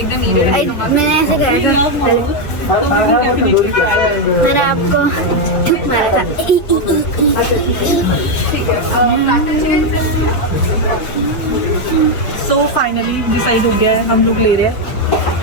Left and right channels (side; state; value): right; late; 5.8 ms